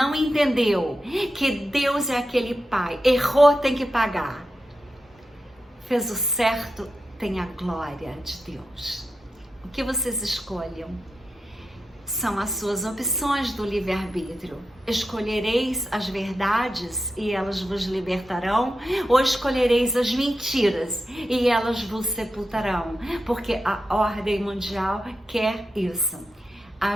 entendeu que Deus é aquele pai, errou, tem que pagar. Fez o certo, tem a glória de Deus. O que vocês escolham? São as suas opções do livre-arbítrio. Escolhereis as verdades e elas vos libertarão, ou escolhereis as mentiras e elas vos sepultarão, porque a ordem mundial quer isso.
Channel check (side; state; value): both; normal; correlation 0.89